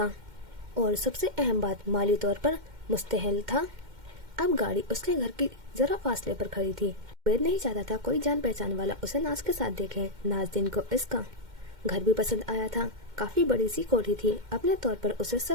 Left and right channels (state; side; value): late; left; 2.1 ms